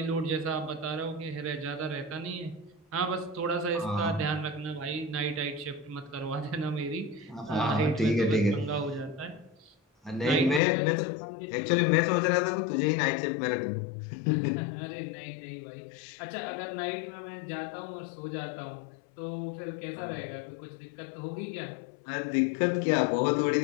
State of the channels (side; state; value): right; drops out; at 10.6 s